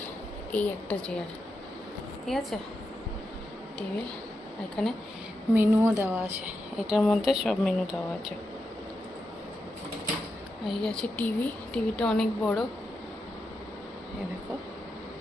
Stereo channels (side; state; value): both; normal; correlation 0.87